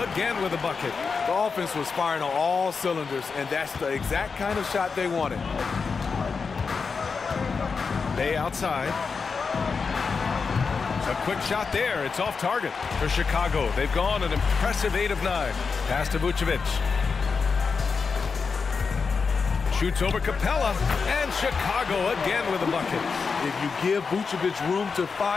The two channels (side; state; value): right; quieter; 5.1 dB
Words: again with a bucket. The offense was firing on all cylinders, and that's the exact kind of shot they wanted. Bay outside. A quick shot there. It's off target for Chicago. They've gone an impressive 8 of 9. Pass to Vucevic. Shoots over Capella, and Chicago again with a bucket. If you give Vucevic room to